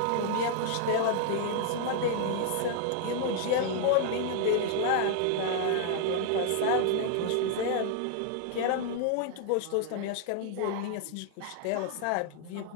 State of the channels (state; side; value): different; both; correlation -0.01